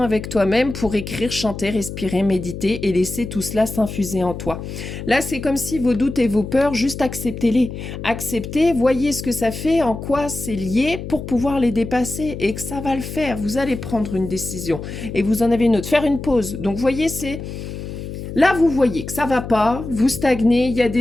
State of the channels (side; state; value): left; noise; hum, 8 dB below the sound